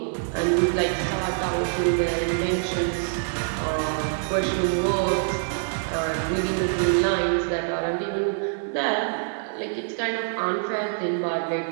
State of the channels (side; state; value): left; silent; digital silence